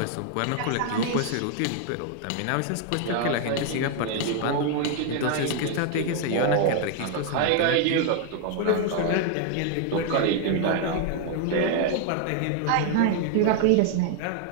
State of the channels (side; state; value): both; different; correlation 0.00